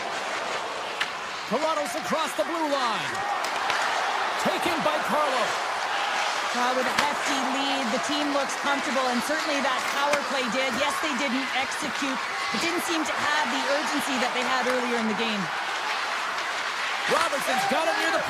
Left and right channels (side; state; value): both; identical; correlation 1.00